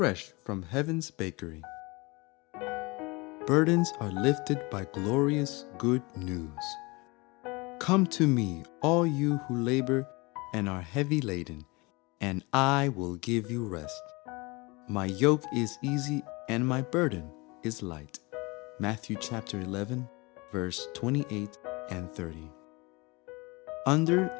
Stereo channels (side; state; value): right; quieter; 25.7 dB